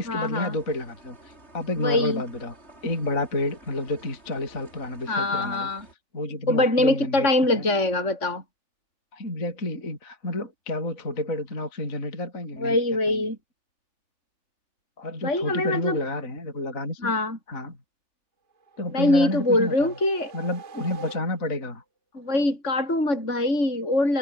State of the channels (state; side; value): late; right; 3.6 ms